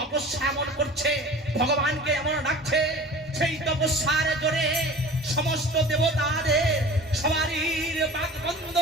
এমন করছে, ভগবানকে এমন ডাকছে, সেই তপস্যার জোরে সমস্ত দেবতাদের সবারই বাক বন্ধ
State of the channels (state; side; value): normal; both; correlation 0.40